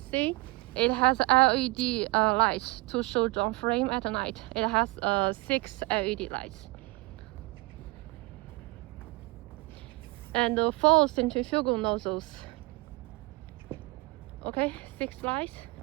it has LED lights to show drum frame at night. It has 6 LED lights. And 4 centrifugal nozzles. Okay, 6 lights.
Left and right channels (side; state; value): left; quieter; 24.1 dB